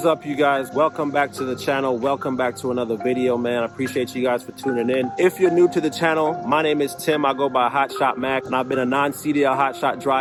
up, you guys? Welcome back to the channel. Welcome back to another video, man. I appreciate you guys for tuning in. If you're new to the channel, my name is Tim. I go by Hotshot Macc, and I've been a non-CDL hotshot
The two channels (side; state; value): both; identical; correlation 1.00